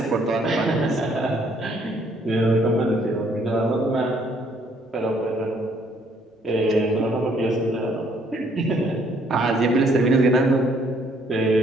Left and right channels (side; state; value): both; normal; correlation 0.65